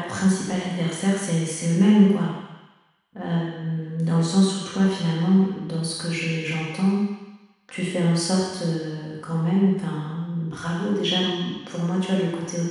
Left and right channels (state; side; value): identical; both; correlation 1.00